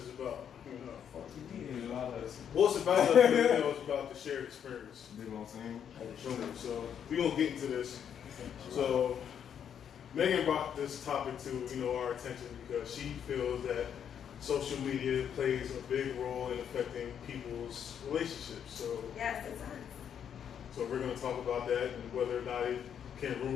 about Fuck you mean about us? well, it's about us. It's about the shared experience. You know what I'm saying? So we're gonna get into this. So Megan brought this topic to our attention because she feels that social media plays a big role in affecting people's relationships. So Yes, it does. so we're gonna talk about that and whether or not it can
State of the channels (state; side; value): quieter; right; 8.5 dB